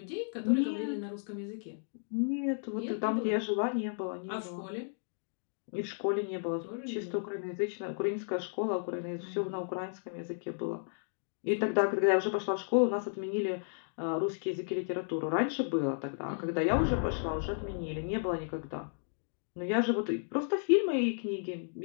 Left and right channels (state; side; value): silent; right; digital silence